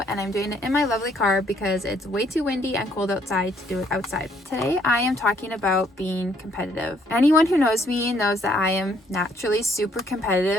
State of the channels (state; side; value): normal; both; correlation 0.66